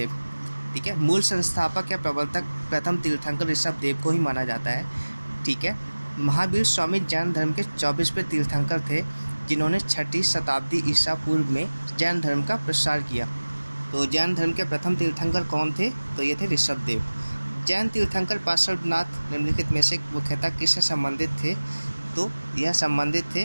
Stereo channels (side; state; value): both; inverted; correlation -1.00